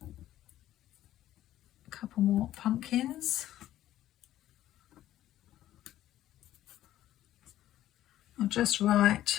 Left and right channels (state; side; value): quieter; right; 13.3 dB